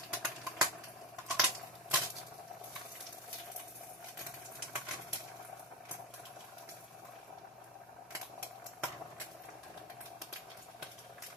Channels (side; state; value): both; normal; correlation 0.18